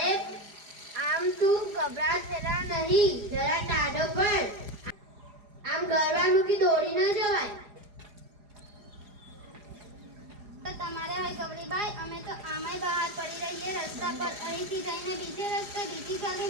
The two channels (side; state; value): left; late; 4.9 ms